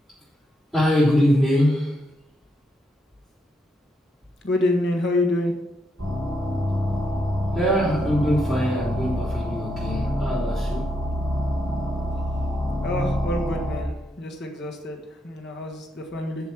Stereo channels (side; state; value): both; normal; correlation 0.80